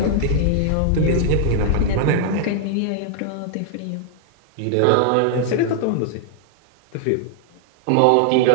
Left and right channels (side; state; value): both; different; correlation 0.00